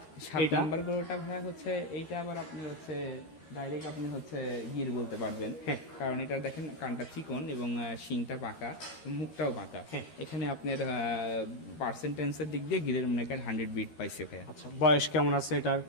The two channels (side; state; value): right; late; 13 ms